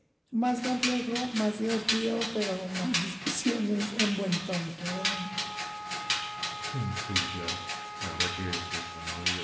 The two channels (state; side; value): identical; both; correlation 1.00